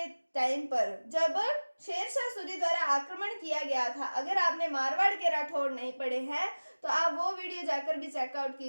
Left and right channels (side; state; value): both; inverted; correlation -1.00